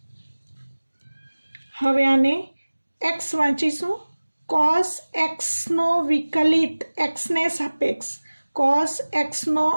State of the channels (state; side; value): inverted; both; correlation -1.00